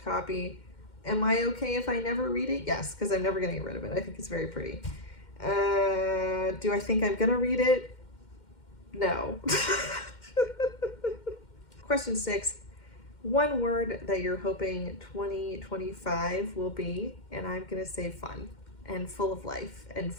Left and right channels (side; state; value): right; late; 2.1 ms